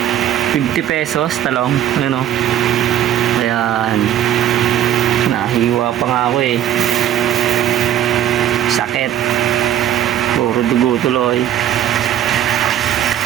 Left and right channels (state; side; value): quieter; left; 11.2 dB